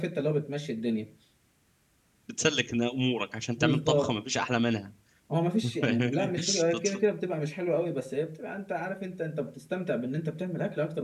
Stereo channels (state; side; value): identical; both; correlation 1.00